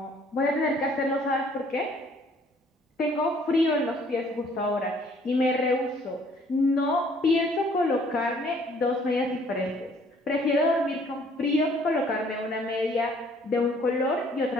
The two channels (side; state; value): both; normal; correlation 0.60